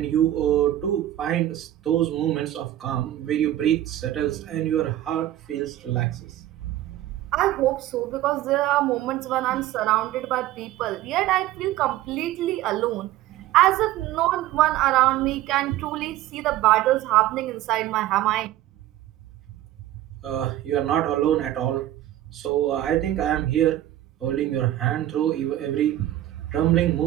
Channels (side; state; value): left; quieter; 13.7 dB